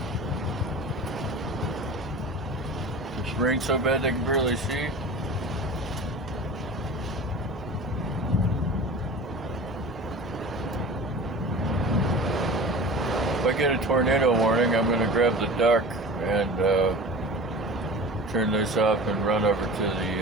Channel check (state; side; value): normal; both; correlation 0.36